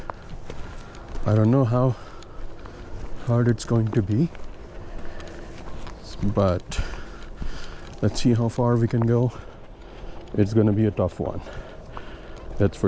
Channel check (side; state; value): both; identical; correlation 1.00